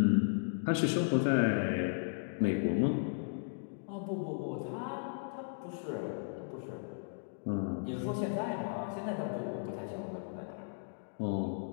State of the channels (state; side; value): silent; right; digital silence